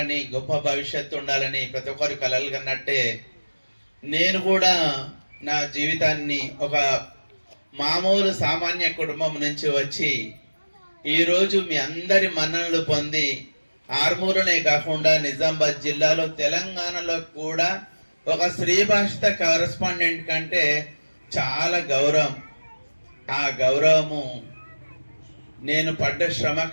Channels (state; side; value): inverted; both; correlation -1.00